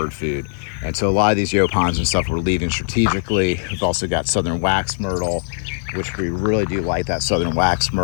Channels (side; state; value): right; silent; 63 dB below the other